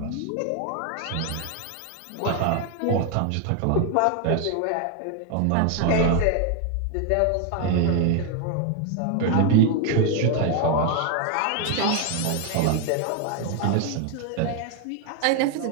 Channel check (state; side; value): different; both; correlation 0.01